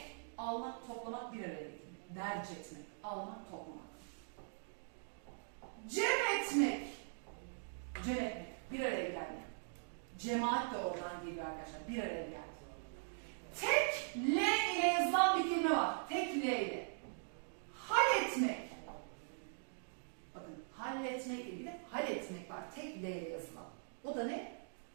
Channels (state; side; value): silent; left; digital silence